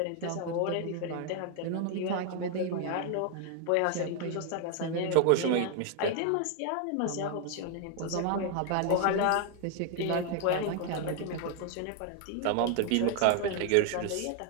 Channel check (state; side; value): different; both; correlation 0.00